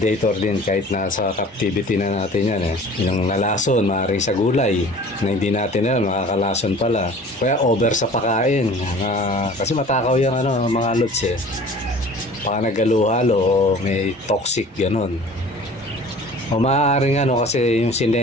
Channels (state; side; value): normal; both; correlation 0.45